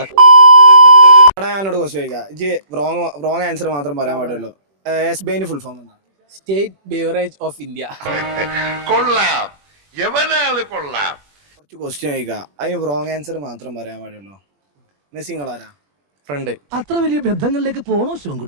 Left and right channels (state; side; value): late; left; 21 ms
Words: ഞാനോട് ക്വസ്റ്റ്യൻ ചോദിക്കാം. റോങ് ആൻസർ മാത്രം പറയാൻ പാടുള്ളൂ. എസ്ബിഐന്റെ ഫുൾ ഫോം എന്താ? State beverage of India. കൊള്ളാം, എവനാള് കൊള്ളാം. കുറച്ച് ക്വസ്റ്റ്യൻ ചോദിക്കാം, അതിന് റോങ് ആൻസർ മാത്രം പറയാൻ പാടുള്ളൂ. മെസ്സിങ്ങളാരാ? ഫ്രണ്ട്. അത്ര വലിയ ബന്ധങ്ങളിലേക്ക് പോണോ